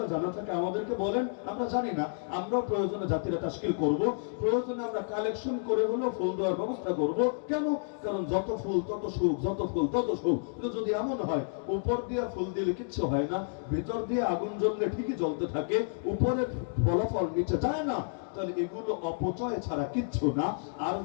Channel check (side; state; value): right; silent; digital silence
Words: জানা থাকে আমাদেরকে বলেন, আমরা জানি না, আমরা প্রয়োজনে জাতিরা তাশকিল করব, প্রয়োজনে আমরা কালেকশন করে হলো ফুল দেওয়ার ব্যবস্থা করব। কেন? কারণ যত ফুল তত সুখ, যত ফুল তত সুখ। কিন্তু যদি এমন হয় উপর দিয়ে ফুল দিলে কিচ্ছু হয় না, ভিতর দিয়ে আগুন জ্বললে ঠিকই জ্বলতে থাকে, উপরে ফলাফল নিচে যায় না, তাহলে এগুলো অপচয় ছাড়া কিচ্ছু না। আর